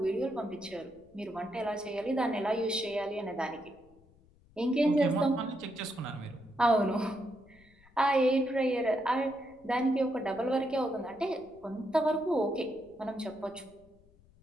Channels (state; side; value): noise; left; rumble, 28 dB below the sound